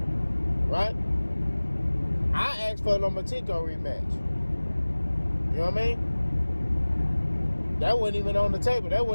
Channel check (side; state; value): both; inverted; correlation -1.00